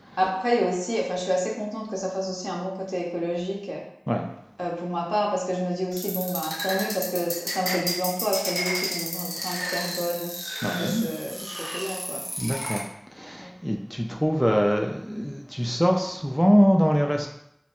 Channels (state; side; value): identical; both; correlation 1.00